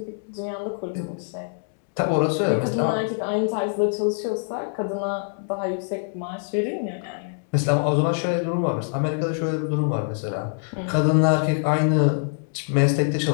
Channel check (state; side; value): silent; right; digital silence